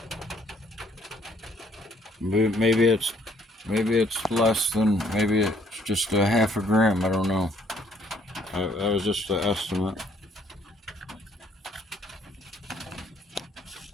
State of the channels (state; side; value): normal; both; correlation 0.64